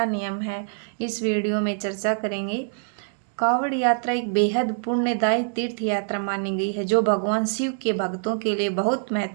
नियम है, इस वीडियो में चर्चा करेंगे। कावड़ यात्रा एक बेहद पुण्यदायी तीर्थ यात्रा मानी गई है जो भगवान शिव के भक्तों के लिए बहुत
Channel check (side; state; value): left; silent; digital silence